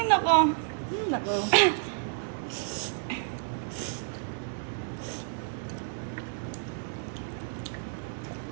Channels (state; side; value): silent; left; 57 dB below the other